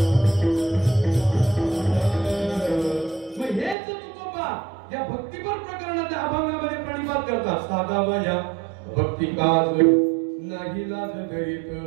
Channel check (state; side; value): drops out; left; at 3.8 s